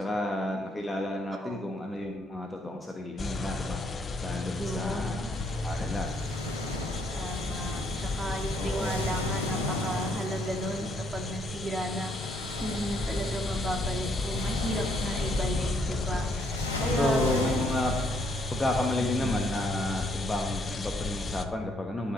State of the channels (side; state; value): both; normal; correlation 0.70